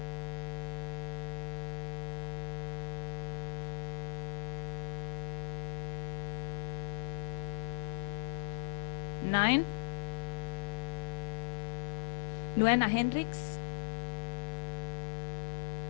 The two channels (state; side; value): quieter; right; 36.6 dB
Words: 9, Luana Hendricks.